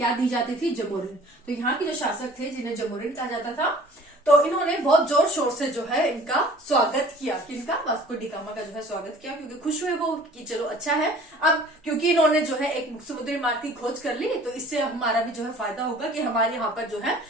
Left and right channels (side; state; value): both; normal; correlation 0.49